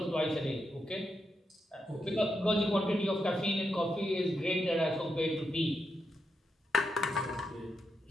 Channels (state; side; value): normal; both; correlation 0.84